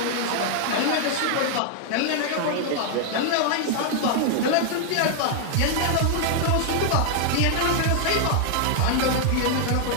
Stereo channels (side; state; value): both; different; correlation 0.00